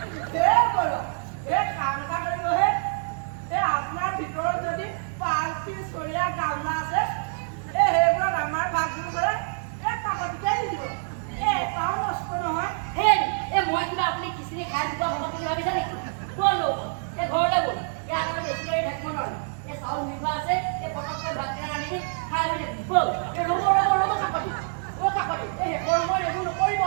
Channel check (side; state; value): left; silent; 59 dB below the other